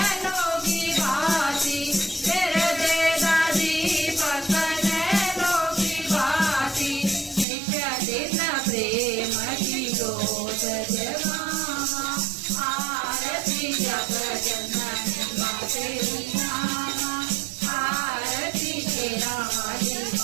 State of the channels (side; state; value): left; drops out; at 7.5 s